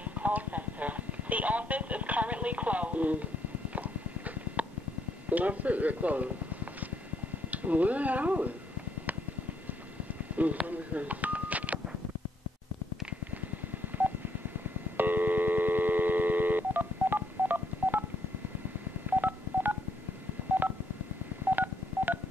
Call Center. The office is currently closed. That's it, they're closed. Where are we? Let me see.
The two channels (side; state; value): both; normal; correlation 0.72